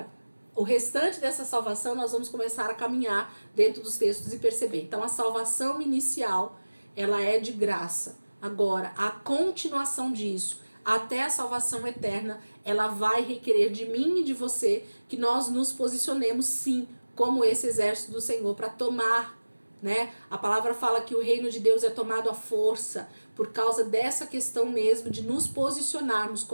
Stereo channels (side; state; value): both; inverted; correlation -1.00